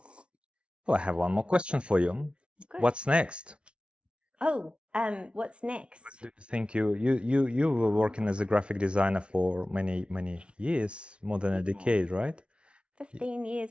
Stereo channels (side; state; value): left; late; 0.058 ms